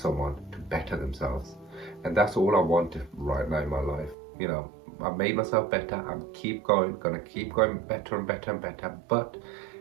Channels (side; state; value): left; drops out; at 4.2 s